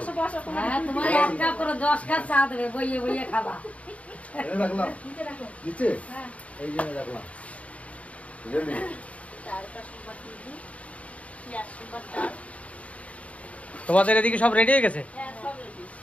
বসো। হ্যাঁ, তোমার 1 কাপ করে 10 কাপ চা দেবে, বইয়ে বইয়ে খাবা। রাখলাম নিচে, হ্যাঁ, এই জন্য রাখলাম, রেডি। তোমাদের এদিকে সব রেডি হয়ে গেছে?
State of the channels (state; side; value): late; right; 0.066 ms